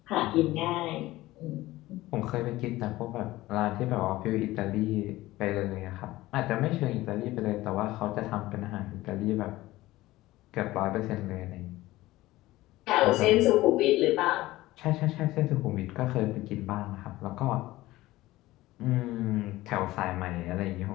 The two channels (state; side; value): quieter; right; 17.5 dB